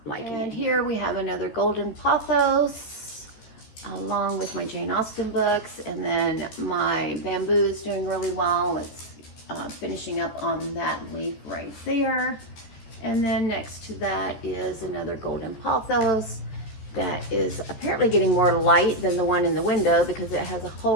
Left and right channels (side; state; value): right; late; 14 ms